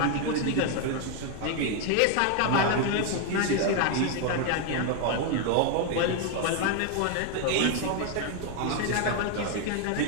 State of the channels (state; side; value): different; both; correlation 0.01